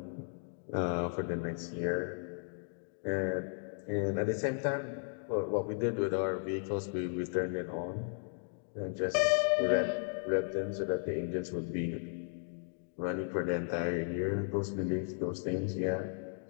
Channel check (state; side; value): silent; right; digital silence